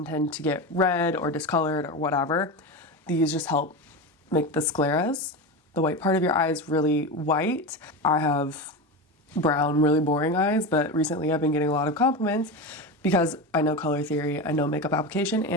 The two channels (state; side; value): normal; both; correlation 0.21